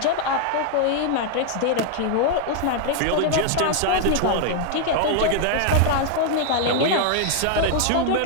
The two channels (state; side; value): different; both; correlation 0.00